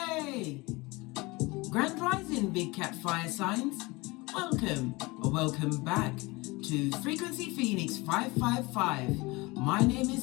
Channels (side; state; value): right; quieter; 23.7 dB